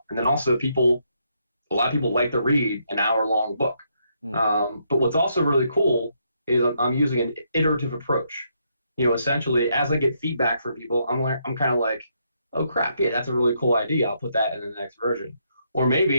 and then also a lot of people like to read an hour-long book. Mm, But what's also really cool is I'm using an iterative approach. Essentially, as I get feedback from people, I'm kind of like, oh crap, yeah, that's a really cool idea. I'll put that in the next version. Or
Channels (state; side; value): inverted; both; correlation -0.76